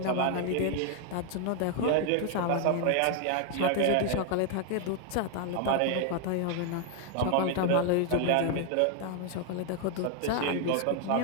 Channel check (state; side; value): different; both; correlation 0.00